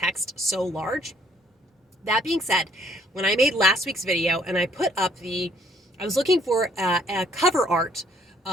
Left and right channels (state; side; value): normal; both; correlation 0.65